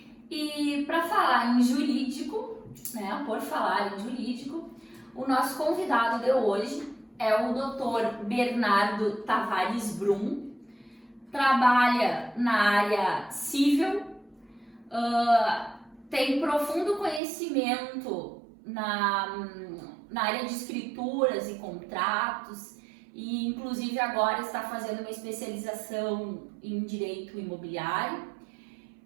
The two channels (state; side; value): drops out; left; at 17.2 s